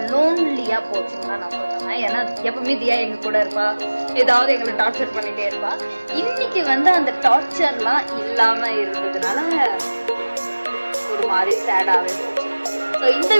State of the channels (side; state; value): both; inverted; correlation -1.00